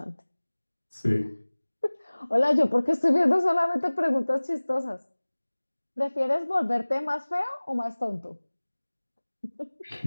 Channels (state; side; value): inverted; both; correlation -1.00